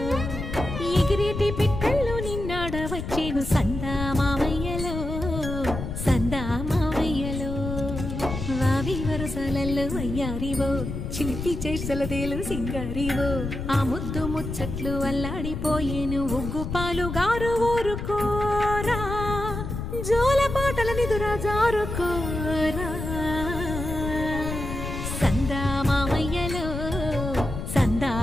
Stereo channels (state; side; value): noise; left; rumble, 6 dB below the sound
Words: ఎగిరేటి పిట్టల్లో నిన్నాడవచ్చేను సందామావయ్యలో సందామావయ్యలో వావి వరసలల్లో వయ్యారివో చిలిపి చేసలదేలు సింగారివో ఆ ముద్దు ముచ్చట్లు అల్లాడిపోయేను ఉగ్గు పాలు గారు ఊరుకోరా జోల పాటల నిదురా జారుకోరా సందామావయ్యలో